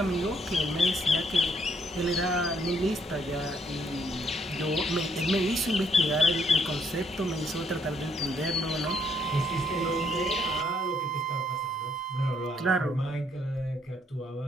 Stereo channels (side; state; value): both; normal; correlation 0.70